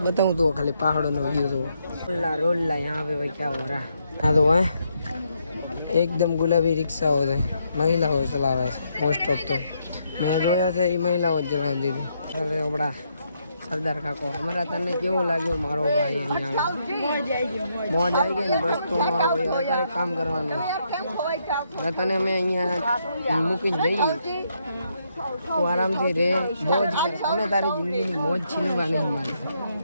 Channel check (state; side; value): inverted; both; correlation -0.77